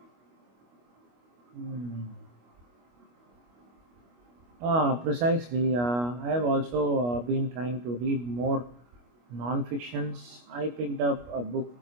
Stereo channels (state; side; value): late; left; 25 ms